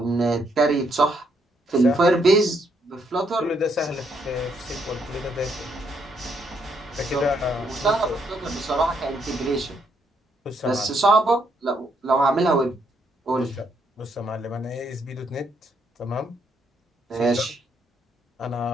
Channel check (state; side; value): normal; both; correlation 0.73